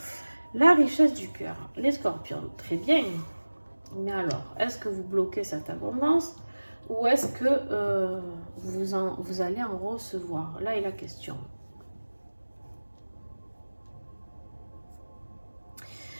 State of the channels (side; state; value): both; inverted; correlation -1.00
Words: La richesse du cœur. Les scorpions, très bien. Mais alors, est-ce que vous bloquez cette abondance ou est-ce que vous allez en recevoir? Là est la question.